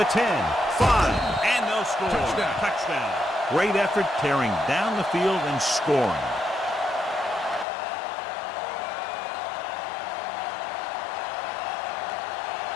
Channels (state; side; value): drops out; right; at 7.7 s